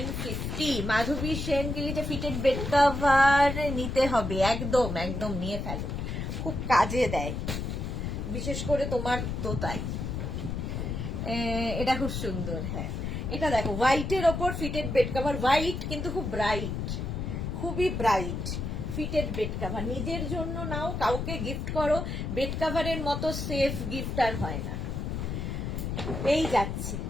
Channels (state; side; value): noise; left; rumble, 3 dB below the sound